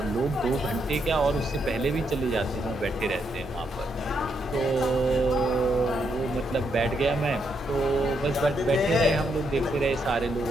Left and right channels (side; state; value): both; normal; correlation 0.78